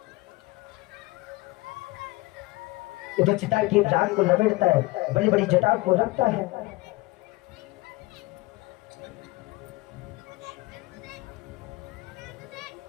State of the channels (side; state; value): right; quieter; 21.1 dB